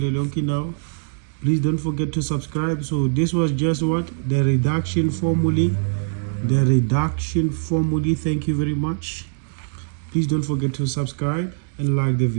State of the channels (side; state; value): left; silent; digital silence